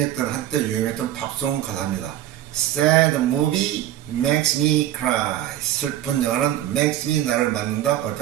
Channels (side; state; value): left; quieter; 12.8 dB